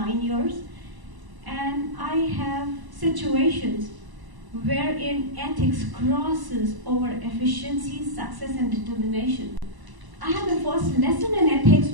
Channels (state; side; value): late; left; 1.0 ms